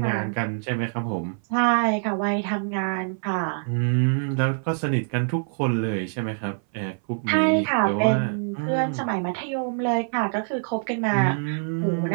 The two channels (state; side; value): silent; left; 59 dB below the other